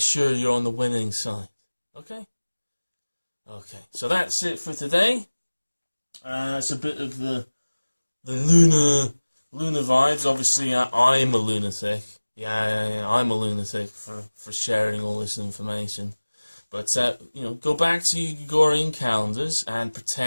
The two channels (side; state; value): both; inverted; correlation -1.00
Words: you're on the winning side. Okay? Okay. So that's it for today. It's a bit of the lunar vibes. Obviously, I'm a lunatic. Yeah, I'm a lunatic for sharing all this information. But, go back to your Gregorian calendars and